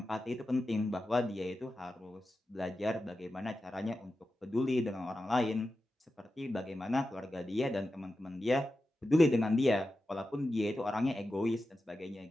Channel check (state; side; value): normal; both; correlation 0.91